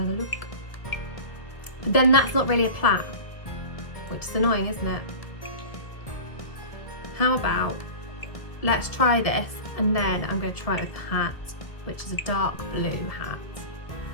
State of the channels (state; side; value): late; right; 1.5 ms